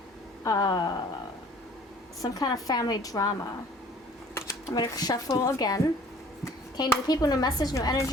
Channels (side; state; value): both; normal; correlation 0.52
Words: some kind of family drama. I'm going to shuffle again. Okay, new people, new message, new